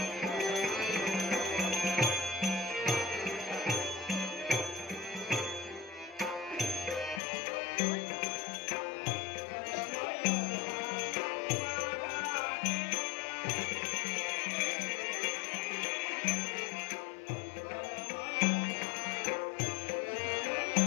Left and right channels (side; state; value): right; drops out; at 7.2 s